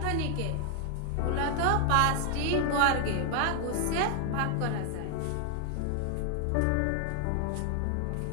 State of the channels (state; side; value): different; both; correlation 0.00